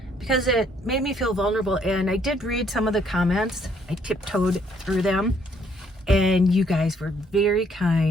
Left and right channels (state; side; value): normal; both; correlation 0.67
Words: because it made me feel vulnerable. And I did read some of the comments. I tiptoed through them, and you guys were very